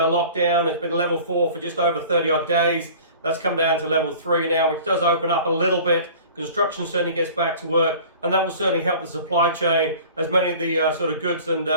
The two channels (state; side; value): inverted; both; correlation -0.44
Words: It's been level 4 for just over 30 odd days. That's come down to level 3 now, which does open up a little bit. Construction certainly gets back to work, and that will certainly help the supply chain, as many of the sort of goods and